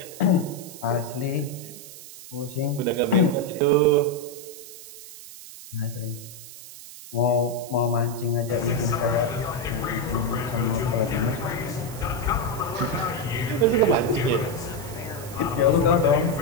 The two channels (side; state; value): right; noise; hiss, 15 dB below the sound